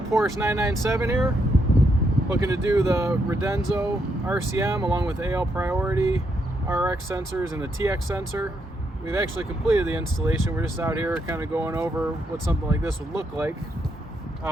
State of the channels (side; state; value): both; normal; correlation 0.78